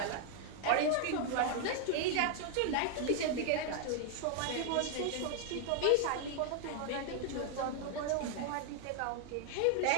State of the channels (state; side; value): different; both; correlation 0.00